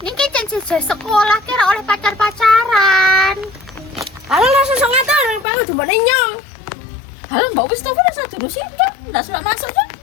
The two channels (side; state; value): right; drops out; at 5.5 s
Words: Niki janji sekolah kira oleh pacar-pacaran. Alah langsung ngatur baru dembane nyong. Halah mbak wis tapi rasa dulu sih tuh, ndak sudah masuk tuh.